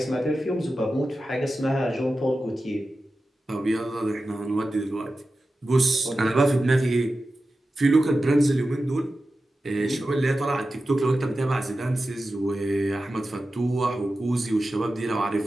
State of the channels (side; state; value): both; normal; correlation 0.93